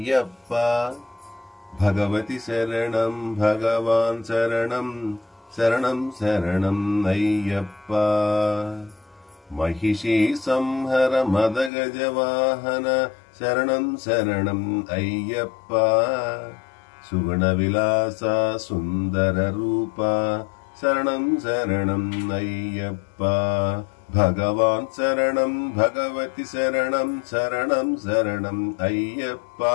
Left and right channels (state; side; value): drops out; right; at 11.7 s